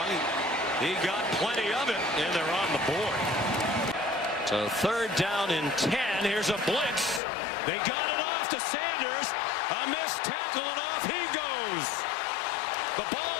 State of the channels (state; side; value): drops out; right; at 7.2 s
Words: He got plenty of it, and they're on the board. So 3rd down and 10, here's a blitz. They got it off to Sanders. A missed tackle, and off he goes. The